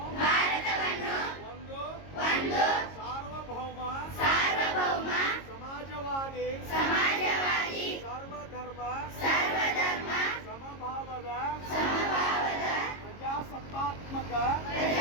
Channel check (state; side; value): late; right; 22 ms